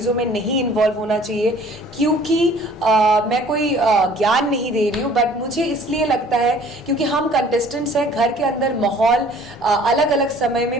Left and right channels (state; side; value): normal; both; correlation 0.53